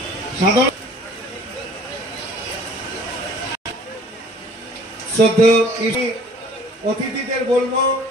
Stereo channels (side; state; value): both; normal; correlation 0.51